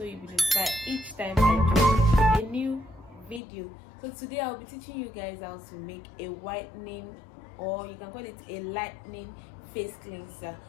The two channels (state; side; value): drops out; right; at 3.4 s